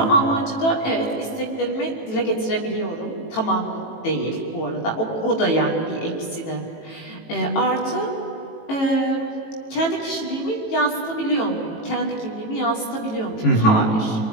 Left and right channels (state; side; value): late; right; 18 ms